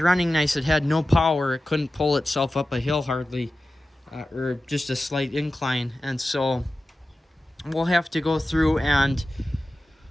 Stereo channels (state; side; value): normal; both; correlation 0.94